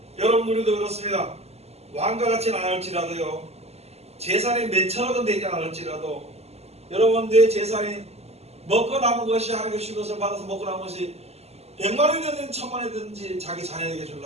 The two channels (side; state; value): left; late; 0.30 ms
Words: 여러분, 우리도 그렇습니다. 왕과 같지는 않을지라도요, 재산이 몇천억은 되지 않을지라도, 여러분, 내 재산이 먹고 남은 것이, 하나님의 준 것을 받아서 먹고 남은 것이 100만원이 되든 1000만원이 되든지 자기 자녀에게